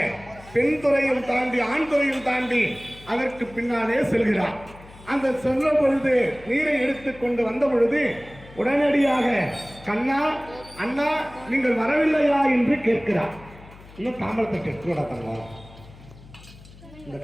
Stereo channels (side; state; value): left; noise; hum, 21 dB below the sound